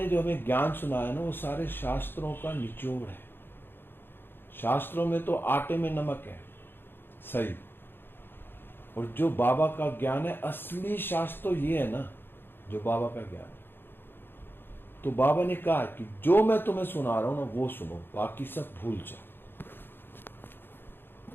जो हमें ज्ञान सुनाया ना वो सारे शास्त्रों का निचोड़ है। शास्त्रों में तो आटे में नमक है, सही। और जो बाबा का ज्ञान है, असली शास्त्र तो ये है ना जो बाबा का ज्ञान है। तो बाबा ने कहा कि जो मैं तुम्हें सुना रहा हूं ना वो सुनो, बाकी सब भूल जाओ।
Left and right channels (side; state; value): right; late; 0.10 ms